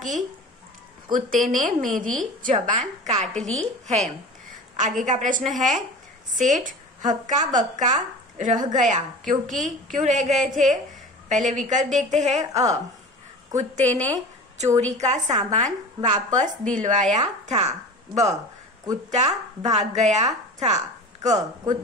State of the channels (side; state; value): both; normal; correlation 0.35